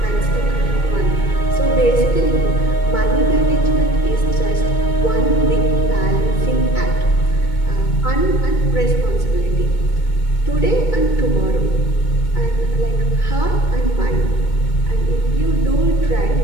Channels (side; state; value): right; late; 2.2 ms